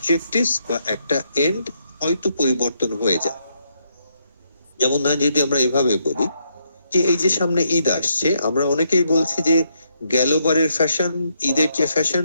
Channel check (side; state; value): both; inverted; correlation -0.76